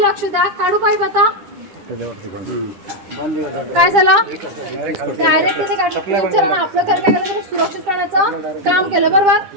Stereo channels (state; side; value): late; left; 9.9 ms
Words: द्या. काढू पाईप आता. काय झालं डायरेक्ट तिथे काढलं आपलं घर काय केलं सुरक्षित करण्याचं काम केलं. बरोबर.